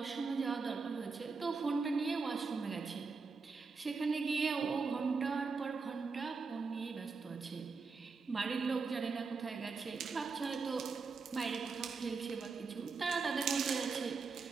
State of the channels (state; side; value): quieter; left; 4.7 dB